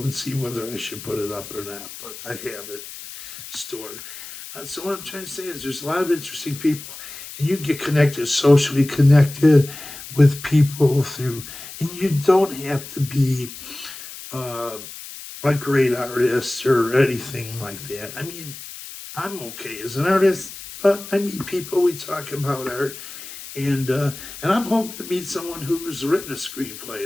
and see whether I should put it up or not. But I have it stored. So what I'm trying to say is there's a lot of interesting people, and you get connected, socially connected with people through, and you don't have to be a great artist or anything like that. I mean, I'm okay as an artist, but I meet people, we talk about art, and I'm hoping to meet someone who's written a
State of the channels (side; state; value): left; noise; hiss, 13 dB below the sound